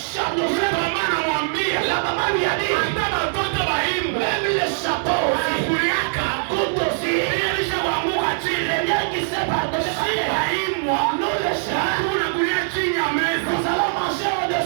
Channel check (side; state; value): left; silent; 63 dB below the other